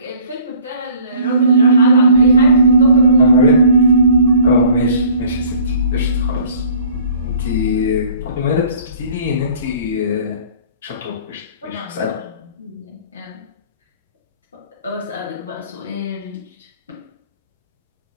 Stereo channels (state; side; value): inverted; both; correlation -0.52